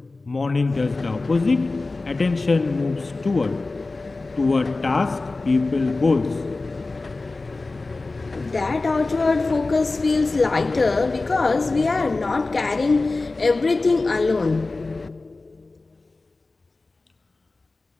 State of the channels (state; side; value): quieter; right; 3.4 dB